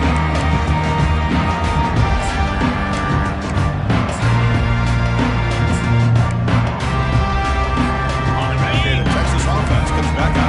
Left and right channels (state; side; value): identical; both; correlation 1.00